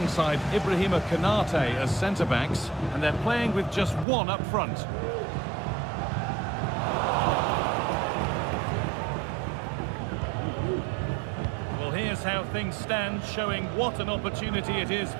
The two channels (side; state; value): left; drops out; at 4.0 s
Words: Ibrahima Konate as centre-backs, and they're playing with just one up front. Here's how things stand, showing what an opportunity it is